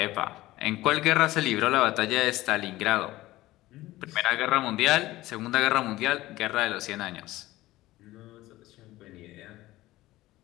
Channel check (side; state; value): right; quieter; 17.3 dB